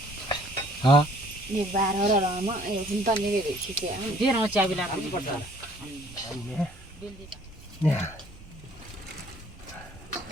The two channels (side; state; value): right; noise; rumble, 20 dB below the sound